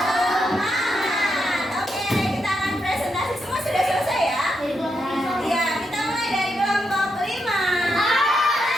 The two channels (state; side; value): normal; both; correlation 0.82